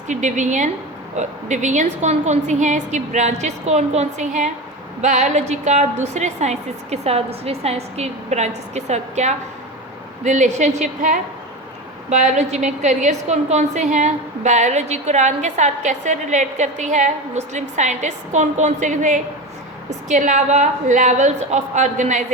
डिवीजन्स कौन कौन सी हैं, इसकी ब्रांचेस कौन कौन सी हैं, बायोलॉजी का दूसरे साइंसेस के साथ, दूसरे साइंस की ब्रांचेस के साथ क्या रिलेशनशिप है, बायोलॉजी में करियर्स कौन कौन से हैं, बायोलॉजी कुरान के साथ कैसे रिलेट करती है, मुस्लिम साइंटिस्ट कौन कौन से थे, इसके अलावा लेवल्स ऑफ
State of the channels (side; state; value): both; normal; correlation 0.24